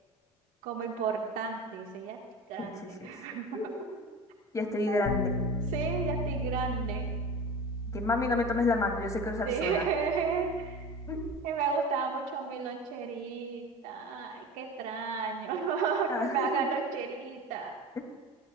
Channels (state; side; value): normal; both; correlation 0.32